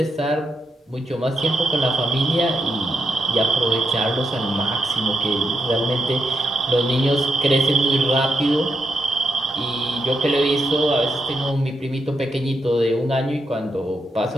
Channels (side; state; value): both; normal; correlation 0.81